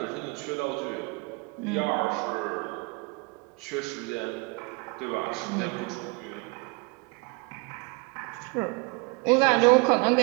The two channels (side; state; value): left; quieter; 28.7 dB